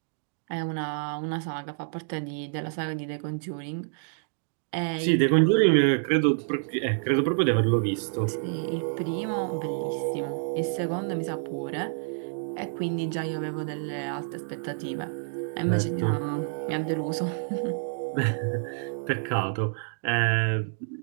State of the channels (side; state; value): left; silent; digital silence